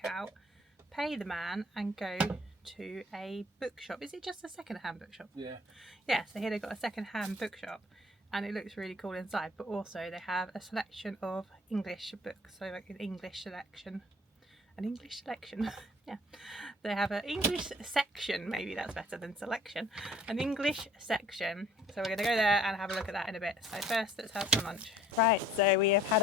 out, pay the man and go to a bookshop. Is it just a second-hand bookshop? Yeah. Yeah, so here they've got a second-hand bookshop and it looks really cool inside, but also they have a selection of English books, so like an English selection. Yeah, they have an English section, maybe that's better than selection, an English section. So we're going to go there and have a look at that in a bit. So first let's have some lunch. Right, so we have had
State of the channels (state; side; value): normal; both; correlation 0.54